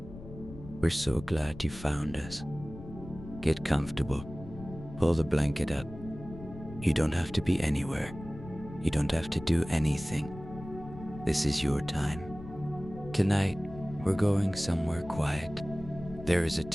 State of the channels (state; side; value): noise; left; rumble, 14 dB below the sound